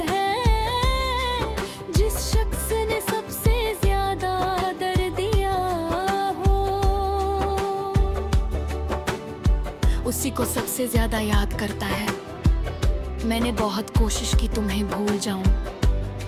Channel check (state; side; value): identical; both; correlation 1.00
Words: उसी को सबसे ज्यादा याद करता है। मैंने बहुत कोशिश की तुम्हें भूल जाऊं,